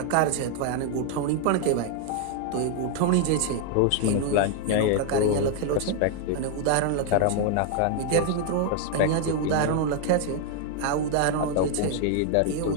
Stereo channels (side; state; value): both; different; correlation 0.00